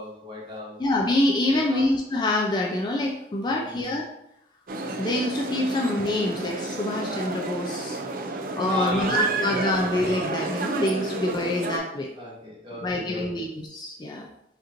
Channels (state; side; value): normal; both; correlation 0.51